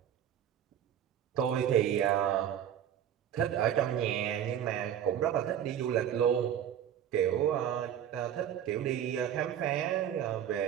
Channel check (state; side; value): quieter; left; 9.9 dB